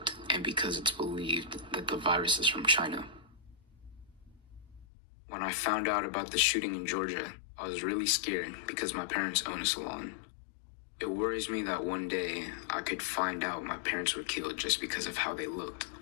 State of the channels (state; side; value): drops out; right; at 4.9 s